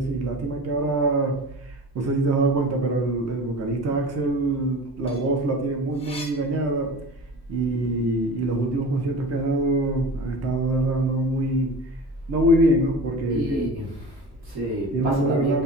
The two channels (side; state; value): both; normal; correlation 0.36